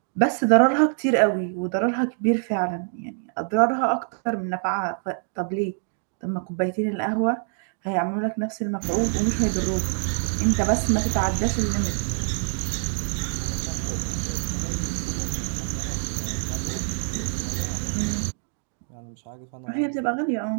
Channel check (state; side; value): silent; left; 62 dB below the other